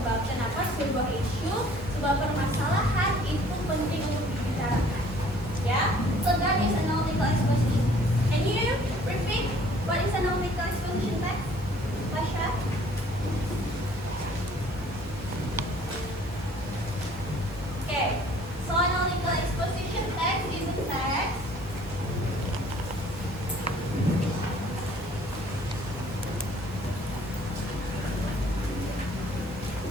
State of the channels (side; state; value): both; normal; correlation 0.56